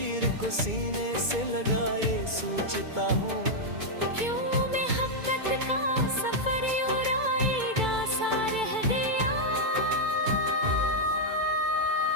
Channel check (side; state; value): left; late; 2.3 ms